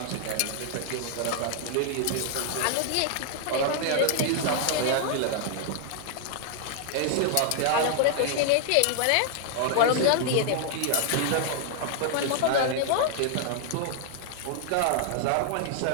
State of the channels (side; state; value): both; different; correlation 0.00